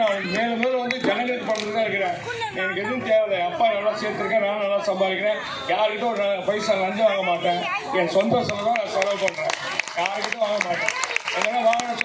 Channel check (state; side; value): identical; both; correlation 1.00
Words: நான் மேலும் வந்து ஜனங்களுக்கு பண்ணுறது தான் இருக்கிறேன். எனக்கு எதுவும் தேவையில்லை. அப்பா நல்லா சேர்த்துருக்கேன், நானும் நல்லா சம்பாதிக்கிறேன். யாருக்கிட்ட ஒரு பைசா லஞ்சம் வாங்க மாட்டேன். என் சொந்த செலவு தான் நான் செலவு பண்ணுறேன். யாருக்கிட்டும் வாங்க மாட்டேன். எங்கன்னா வாங்கின